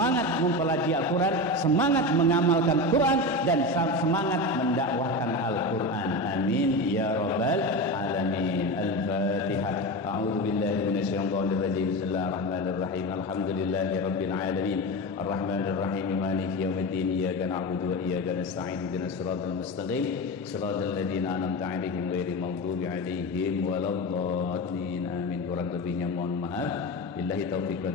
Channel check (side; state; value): both; normal; correlation 0.23